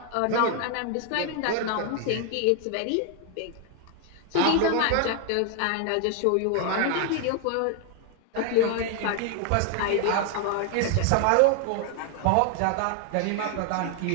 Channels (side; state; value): both; different; correlation 0.00